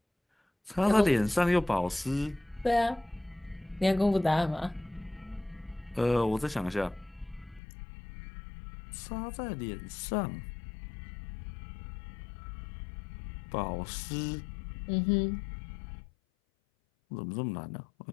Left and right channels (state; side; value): drops out; right; at 7.6 s